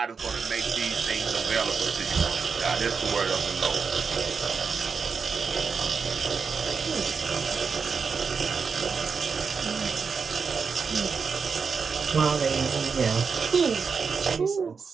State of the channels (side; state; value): left; quieter; 5.5 dB